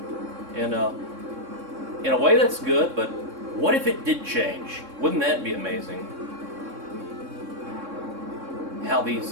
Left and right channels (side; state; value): left; late; 3.6 ms